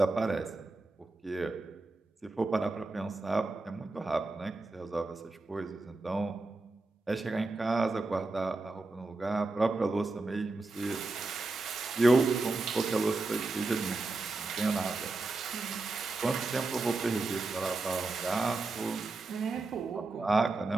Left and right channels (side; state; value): left; quieter; 3.3 dB